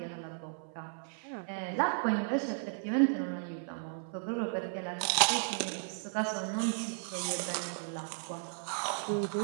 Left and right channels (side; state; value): left; silent; 55 dB below the other